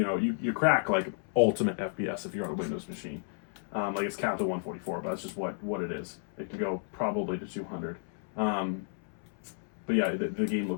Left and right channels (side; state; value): right; silent; 56 dB below the other